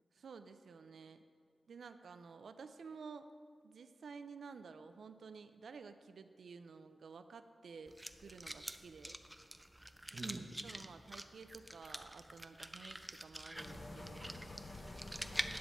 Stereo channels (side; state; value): both; normal; correlation 0.95